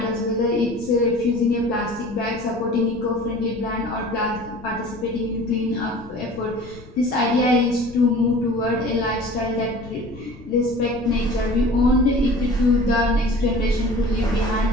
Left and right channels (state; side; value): noise; left; rumble, 20 dB below the sound